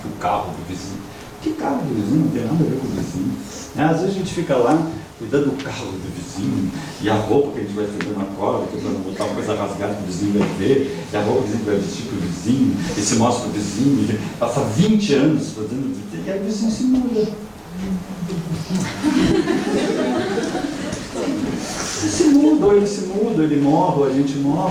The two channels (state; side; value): identical; both; correlation 1.00